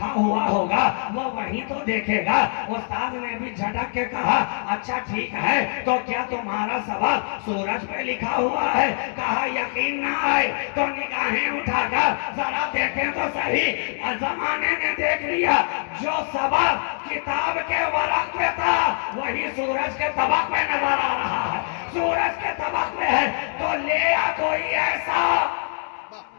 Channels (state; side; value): silent; right; 61 dB below the other